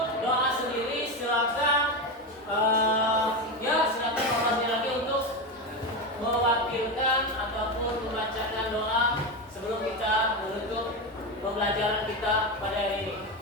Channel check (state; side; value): normal; both; correlation 0.16